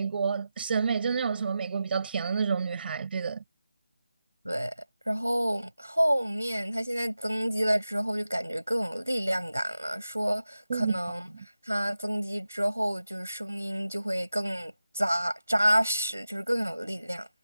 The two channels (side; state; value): both; inverted; correlation -0.93